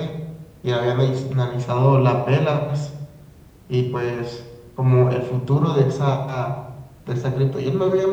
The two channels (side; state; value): both; identical; correlation 1.00